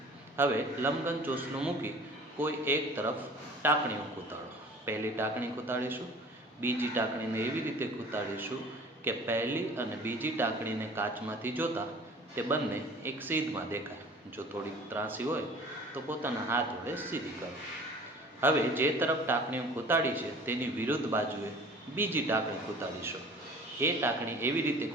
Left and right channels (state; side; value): normal; both; correlation 0.46